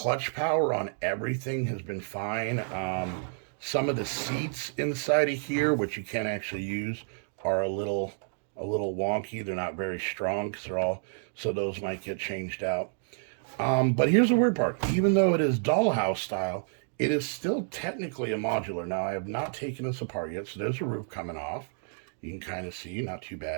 power on everything has been fine. Some of the seats inside of here, which you can't actually use, are a little wonky. They're not very strong because they're all, so those might get changed out. But here's the weird part. Even though it is dollhouse style, it is still technically a modular. Now, I have not taken this apart yet, so there's a roof coming off. You can kind of see, not too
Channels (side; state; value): left; silent; digital silence